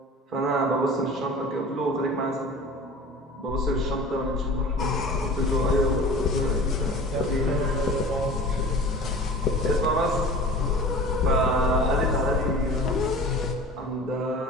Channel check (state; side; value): normal; both; correlation 0.40